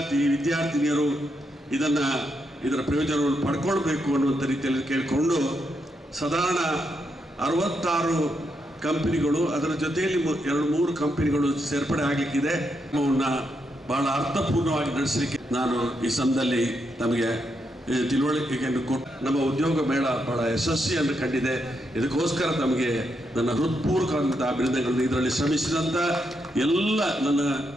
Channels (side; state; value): both; normal; correlation 0.81